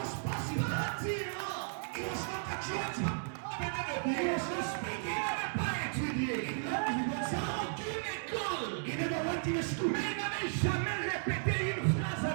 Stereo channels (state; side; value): silent; left; digital silence